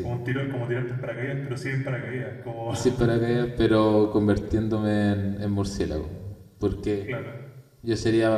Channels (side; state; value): both; identical; correlation 1.00